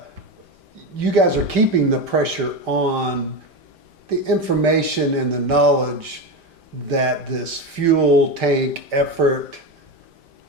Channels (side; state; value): left; late; 5.1 ms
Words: guys are keeping the pressure on the information and the knowledge that this fuel tank effort